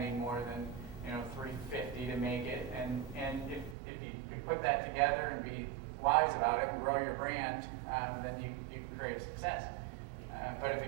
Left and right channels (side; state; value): left; drops out; at 3.8 s